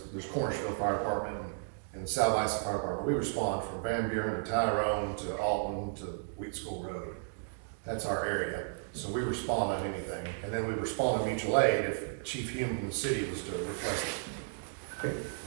Cornerville Fire Department and the South Isa Fire Department. We respond from Van Buren to Tyrone to Alton to Wheat School Road. That's our area. So we respond on anything. And then we respond to mutual aid if Chief Hume from the city was to request it. Okay.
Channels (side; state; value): left; silent; digital silence